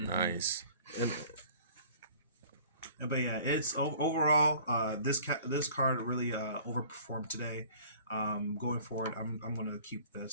But yeah, it's overall this card really overperformed today. Going forward, I'm gonna keep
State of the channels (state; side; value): inverted; both; correlation -0.50